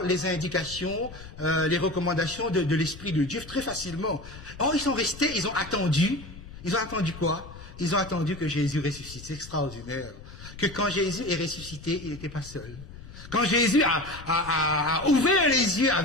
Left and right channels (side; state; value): left; noise; rumble, 15 dB below the sound